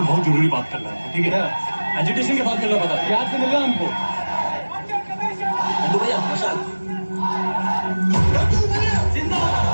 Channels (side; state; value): both; inverted; correlation -1.00